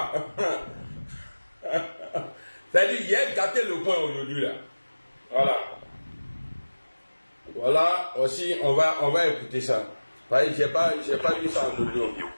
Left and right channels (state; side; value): inverted; both; correlation -1.00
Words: C'est-à-dire, il a gâté le coin aujourd'hui là. Voilà. Voilà, aussi, on va écouter ça. J'ai pas vu ça en audio.